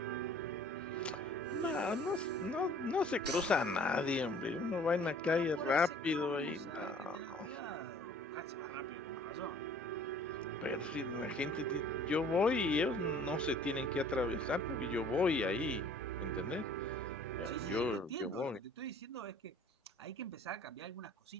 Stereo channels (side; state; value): both; normal; correlation 0.52